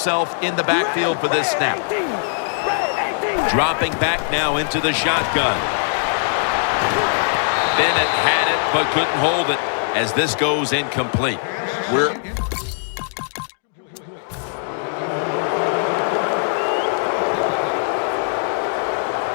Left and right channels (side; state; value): right; silent; digital silence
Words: in the backfield for this snap. Dropping back now into the shotgun. Bennett had it but couldn't hold it as this goes incomplete.